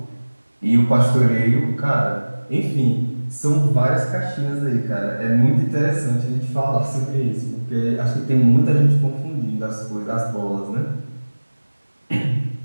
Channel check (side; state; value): both; inverted; correlation -1.00